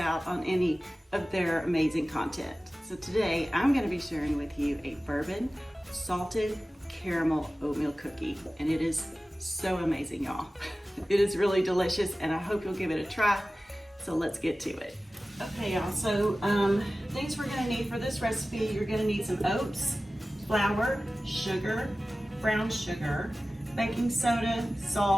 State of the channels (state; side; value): normal; both; correlation 0.96